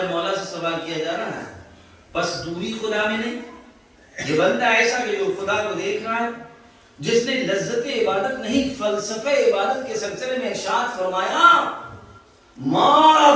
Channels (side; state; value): both; identical; correlation 1.00